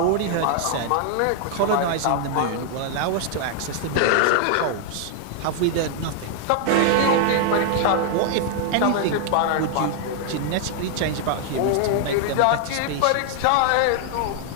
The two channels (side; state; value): both; different; correlation 0.00